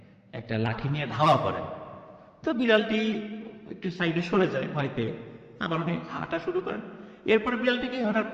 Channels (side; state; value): both; identical; correlation 1.00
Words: একটা লাঠি নিয়ে ধাওয়া করেন, তো বিড়ালটি একটু সাইডে সরে যায় ভয় পেয়ে, আবার উনি হাঁটা শুরু করেন। এরপরে বিড়ালটিকে ওনার